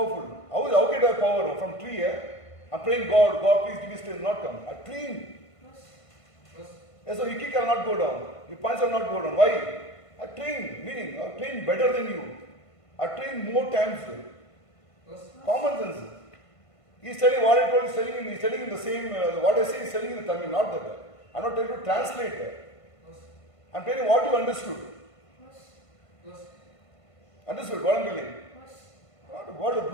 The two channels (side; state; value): right; late; 1.5 ms